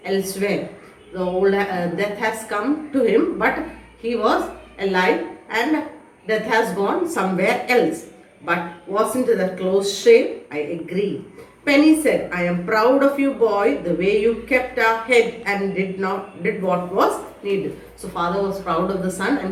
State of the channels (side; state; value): both; identical; correlation 1.00